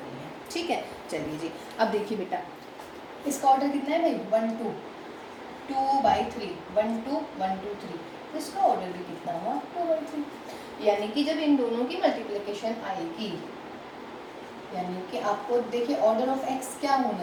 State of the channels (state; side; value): identical; both; correlation 1.00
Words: है। ठीक है, चलिए जी अब देखिए बेटा इसका ऑर्डर कितना है भाई 1 2 2/3 1 2 1 2 3, तो इसका ऑर्डर भी कितना हुआ 2/3। यानी कि जब इन दोनों की मल्टीप्लिकेशन आएगी यानी कि आपको देखिए ऑर्डर ऑफ x क्या